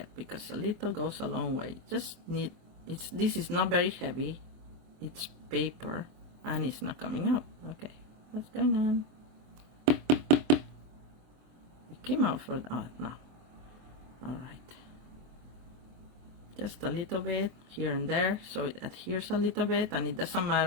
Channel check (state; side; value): late; left; 24 ms